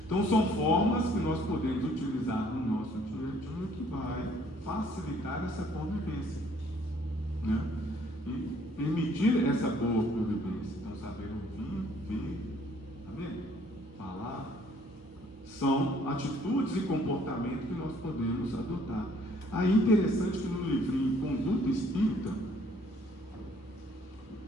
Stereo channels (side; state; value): both; normal; correlation 0.61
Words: Então são formas que nós podemos utilizar no nosso dia a dia que vai facilitar essa convivência, né? E permitir essa boa convivência. Então saber ouvir, ver, tá vendo? Falar, São atitudes e comportamento que nós podemos adotar. Aí interessante que no livrinho Conduta Espírita,